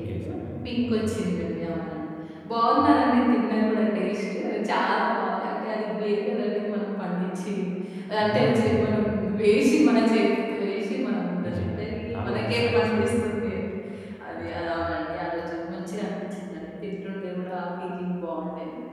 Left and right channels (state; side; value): identical; both; correlation 1.00